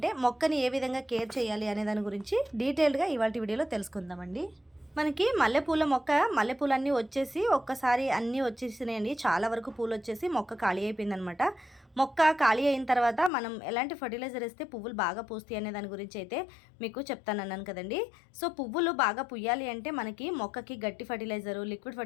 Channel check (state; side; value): drops out; right; at 13.3 s